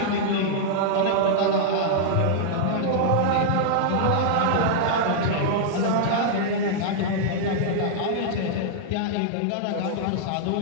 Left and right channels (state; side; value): different; both; correlation -0.01